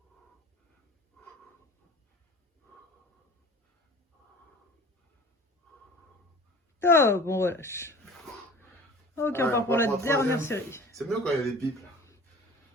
Top, on relâche. Ok, on part pour la dernière série. C'est mieux quand il y a des pipes là.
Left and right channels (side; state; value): both; normal; correlation 0.43